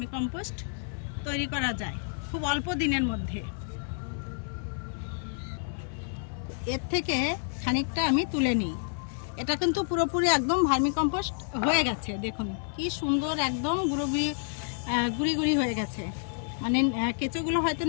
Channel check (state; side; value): silent; right; 58 dB below the other